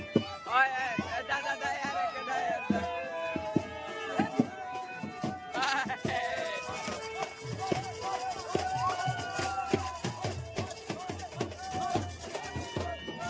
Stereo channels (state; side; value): identical; both; correlation 1.00